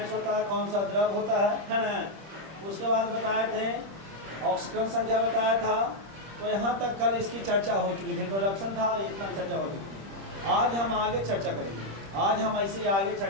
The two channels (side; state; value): left; late; 26 ms